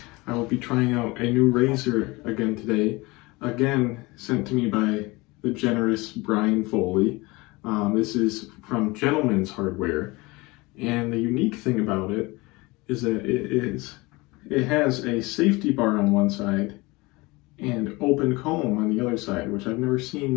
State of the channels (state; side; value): quieter; right; 23.4 dB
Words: I will be trying out a new razor again today. Again, sent to me by the generous Brian Foley. This is from Gentlemanshardware, and the unique thing about it is that it has a safety bar on one side and open comb on the other side, which I've never